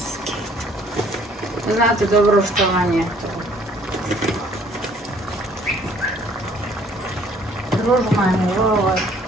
Znate dobro što vam je to. Družmani, ovo.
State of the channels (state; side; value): normal; both; correlation 0.60